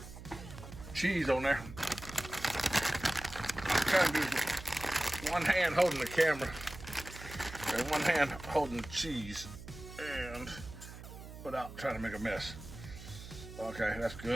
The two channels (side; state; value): right; noise; hum, 13 dB below the sound